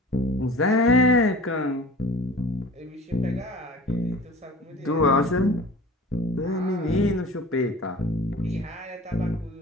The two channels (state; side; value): normal; both; correlation 0.41